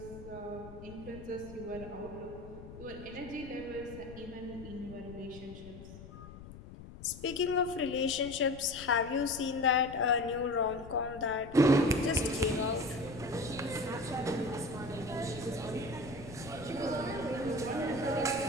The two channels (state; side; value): noise; left; rumble, 14 dB below the sound